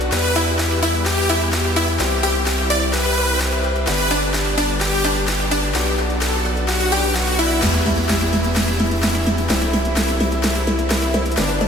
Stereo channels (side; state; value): both; normal; correlation 0.64